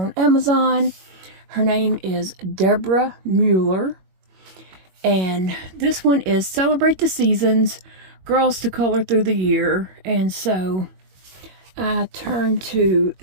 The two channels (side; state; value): left; late; 21 ms